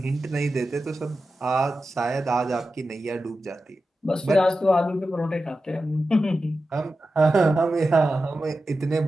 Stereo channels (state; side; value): normal; both; correlation 0.92